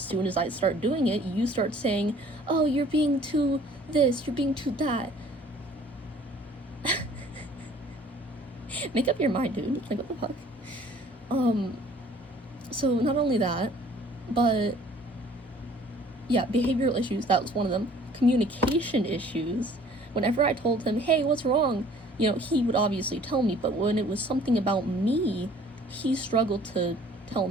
as I start doing it, you start saying, oh, you're being too this, you're being too that. Make up your mind, dude. Like, what the fuck? So not only that, but yeah, behavioral issues, that was one of them. Communication issues. Whenever I told him, hey, what's wrong? You know, he would obviously tell me, but when it was something about me, he struggled to tell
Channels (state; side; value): normal; both; correlation 0.54